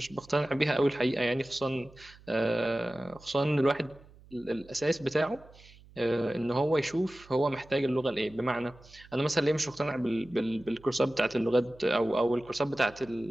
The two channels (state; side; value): noise; right; hum, 24 dB below the sound